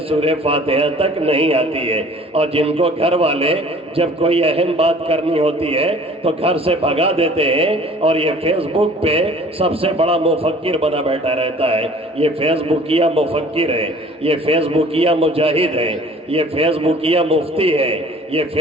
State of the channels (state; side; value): normal; both; correlation 0.50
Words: سورہ فاتحہ تک نہیں آتی ہے اور جن کو گھر والے جب کوئی اہم بات کرنی ہوتی ہے تو گھر سے بھگا دیتے ہیں اور یہ فیس بک پہ سب سے بڑا مفکر بنا بیٹھا رہتا ہے۔ یہ فیس بکیا مفکر ہے، یہ فیس بکیا مجاہد ہے، یہ فیس بکیا مفتی ہے، یہ